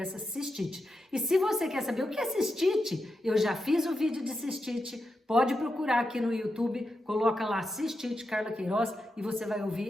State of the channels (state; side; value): normal; both; correlation 0.87